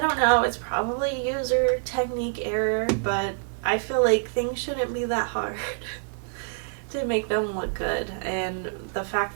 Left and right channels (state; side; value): silent; left; digital silence